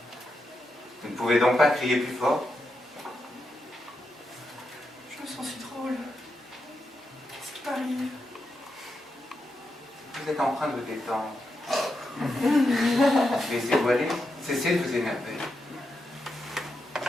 Vous ne pouvez donc pas crier plus fort? Je me sens si drôle. Qu'est-ce qui m'arrive? Vous êtes en train de vous détendre. Laissez-vous aller. Cessez de vous énerver.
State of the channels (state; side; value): normal; both; correlation 0.85